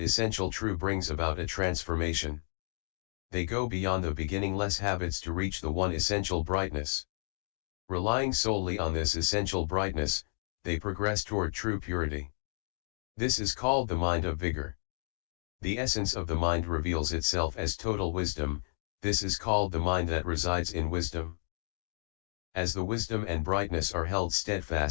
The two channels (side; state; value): right; silent; digital silence